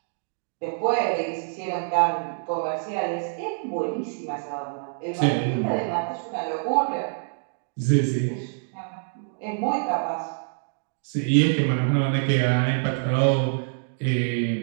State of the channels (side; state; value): left; silent; digital silence